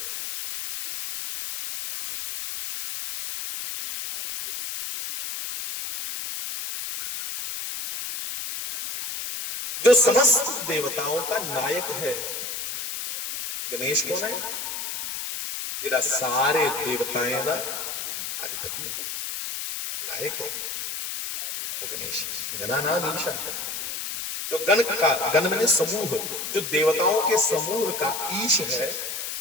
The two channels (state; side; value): noise; left; hiss, 5 dB below the sound